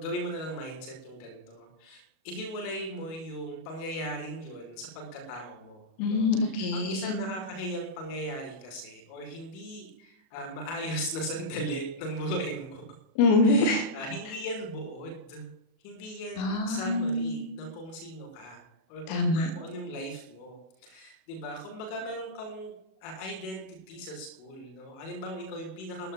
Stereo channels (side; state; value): right; late; 37 ms